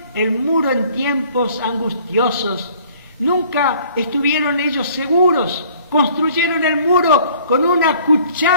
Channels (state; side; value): inverted; both; correlation -0.55